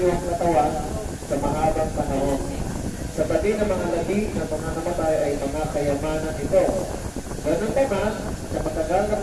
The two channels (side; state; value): both; identical; correlation 1.00